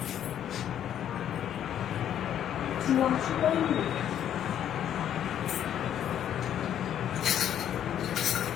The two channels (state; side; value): quieter; right; 10.2 dB